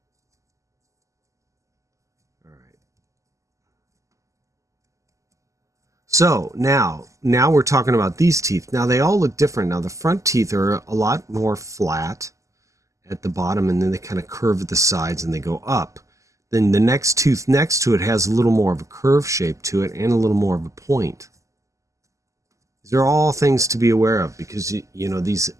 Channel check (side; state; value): left; late; 0.16 ms